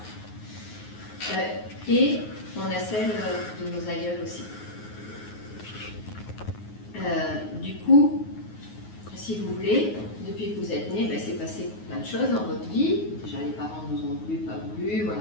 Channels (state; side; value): late; right; 9.5 ms